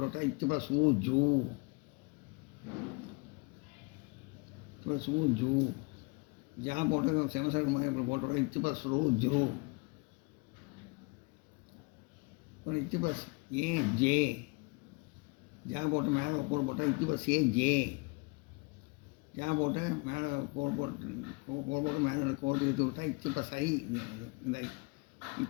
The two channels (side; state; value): right; quieter; 29.1 dB